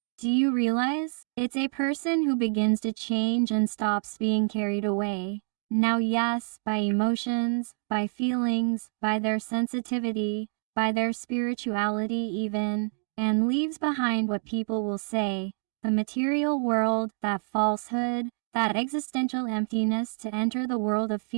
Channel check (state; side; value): quieter; left; 35.6 dB